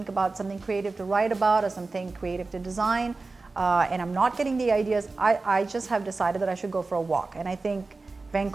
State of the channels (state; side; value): quieter; left; 3.7 dB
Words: about something creative to write about or something creative to design, and I'm not getting the ideas, I just have decided that I should go for a walk. And I think